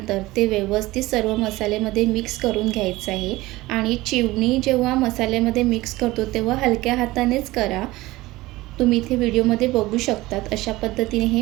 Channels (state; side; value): quieter; left; 19.1 dB